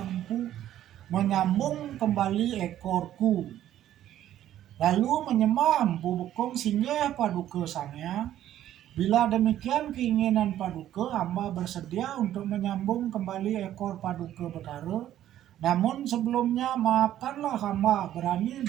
Empu menyambung kembali ekorku." Lalu menyembah Empu Bekung, "Singgih Paduka Sang Hyang, bila demikian keinginan Paduka, hamba bersedia untuk menyambung kembali ekor Paduka Betara. Namun sebelumnya maafkanlah hamba berani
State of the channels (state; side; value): quieter; left; 12.1 dB